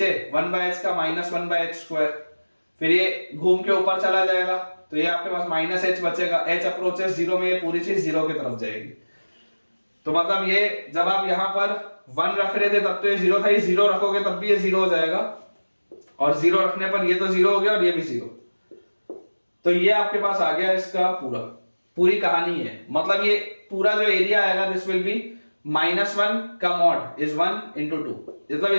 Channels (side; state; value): both; inverted; correlation -1.00